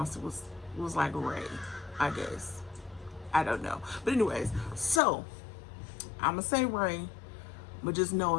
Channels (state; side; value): drops out; right; at 5.0 s